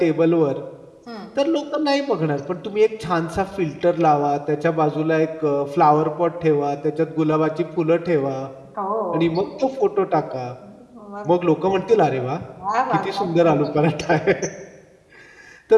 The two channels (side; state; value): both; identical; correlation 1.00